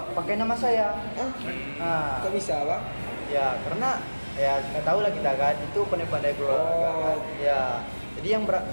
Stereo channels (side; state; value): both; inverted; correlation -1.00